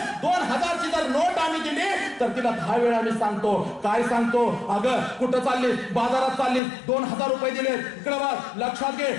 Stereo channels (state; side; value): drops out; right; at 6.6 s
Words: 2000ची जर नोट आम्ही दिली तर तिला 10 वेळा आम्ही सांगतो. काय सांगतो? अगं कुठं चाललीस? बाजारात चाललीस, 2000 रुपये दिले, इकडे बघ, लक्षात घे,